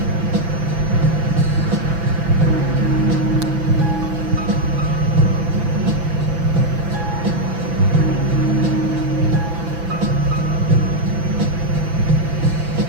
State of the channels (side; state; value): left; late; 6.0 ms